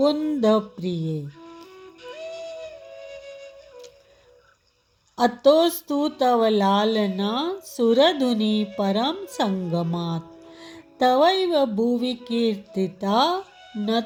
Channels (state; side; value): identical; both; correlation 1.00